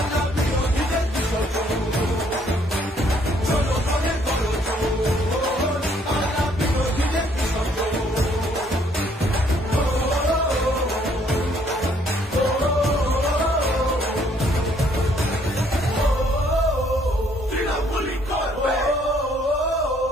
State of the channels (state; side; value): normal; both; correlation 0.65